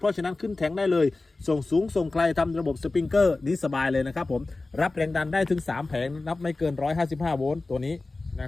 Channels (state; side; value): quieter; right; 3.3 dB